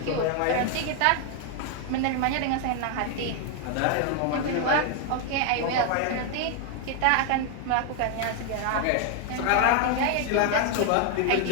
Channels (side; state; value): both; different; correlation 0.01